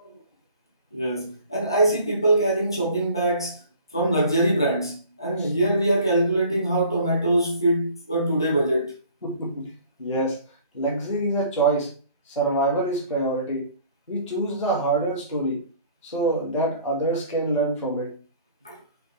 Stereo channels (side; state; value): both; inverted; correlation -0.52